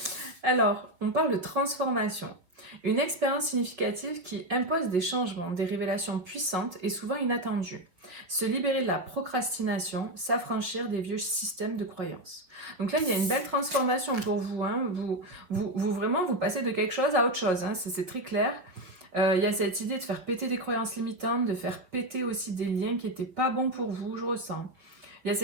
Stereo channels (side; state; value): left; late; 5.6 ms